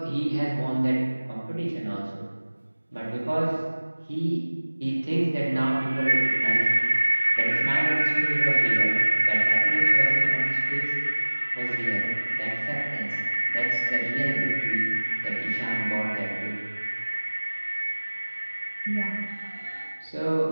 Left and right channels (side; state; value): both; inverted; correlation -1.00